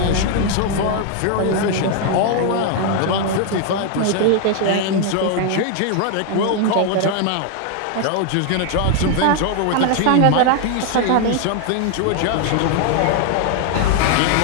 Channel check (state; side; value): different; both; correlation 0.00